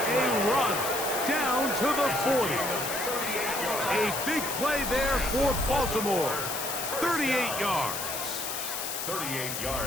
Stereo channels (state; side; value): noise; left; hiss, 4 dB below the sound